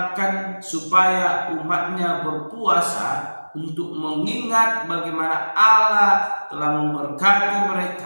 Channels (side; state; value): both; inverted; correlation -1.00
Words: supaya umatnya berpuasa untuk mengingat bagaimana Allah telah memberkati